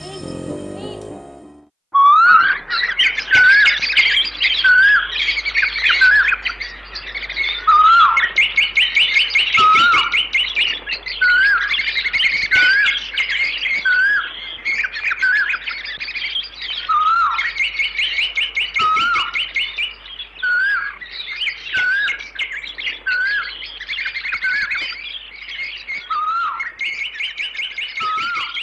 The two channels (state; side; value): identical; both; correlation 1.00